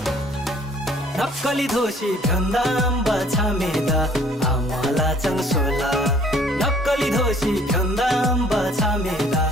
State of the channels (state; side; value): normal; both; correlation 0.57